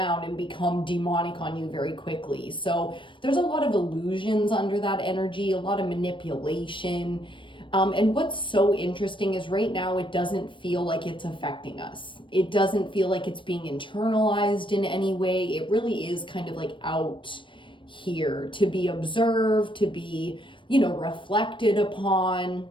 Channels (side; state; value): right; late; 0.24 ms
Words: and become demonic on you very quickly. So there's a lot of illusions under that energy, a lot of manipulation. And what's so interesting is right now it doesn't feel like it's affecting us. It doesn't feel like it's being internalized in any way. It really is kind of like out here to be observed, to be reflected upon.